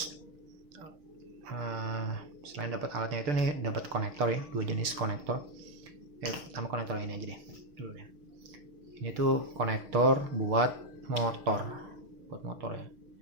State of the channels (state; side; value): late; left; 6.6 ms